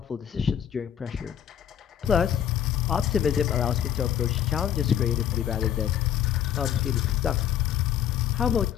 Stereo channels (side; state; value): right; quieter; 9.8 dB